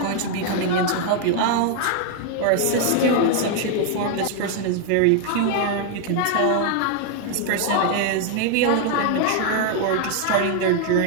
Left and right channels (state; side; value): different; both; correlation 0.00